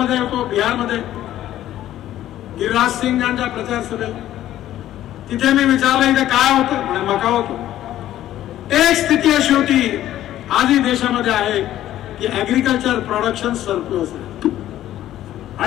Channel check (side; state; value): right; quieter; 13.0 dB